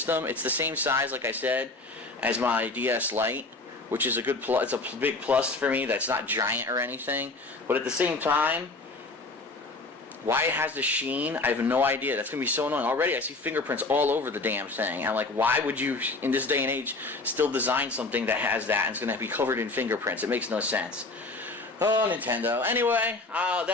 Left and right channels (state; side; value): quieter; right; 3.3 dB